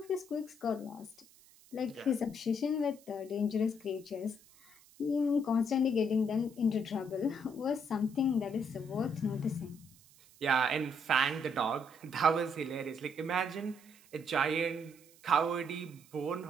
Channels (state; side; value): noise; right; hiss, 26 dB below the sound